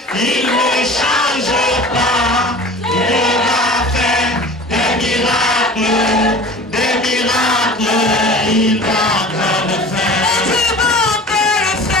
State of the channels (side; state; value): both; normal; correlation 0.40